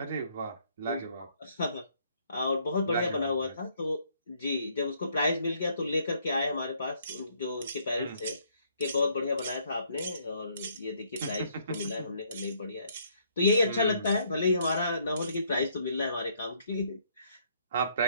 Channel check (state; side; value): inverted; both; correlation -0.67